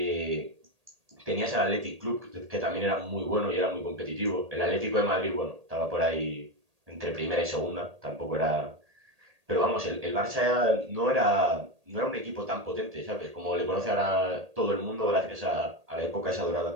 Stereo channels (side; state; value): left; late; 1.8 ms